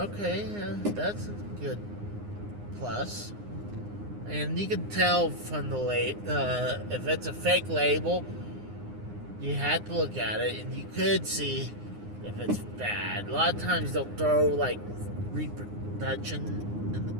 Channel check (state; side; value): late; left; 9.7 ms